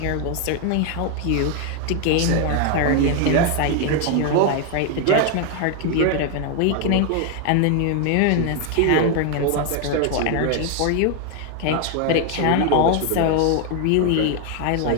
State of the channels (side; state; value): both; different; correlation 0.00